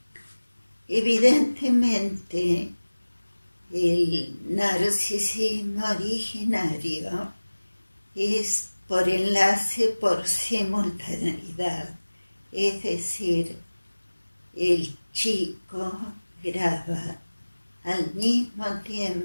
Evidentemente, el narcisismo originario es por enlace por simultaneidad, es decir, el chico graba al mismo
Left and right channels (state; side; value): inverted; both; correlation -1.00